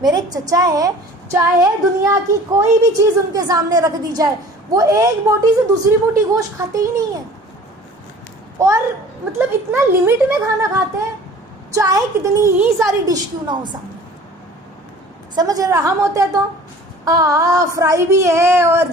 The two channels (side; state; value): both; normal; correlation 0.46